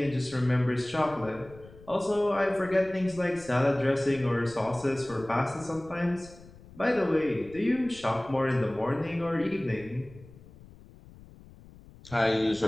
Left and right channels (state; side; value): noise; left; rumble, 21 dB below the sound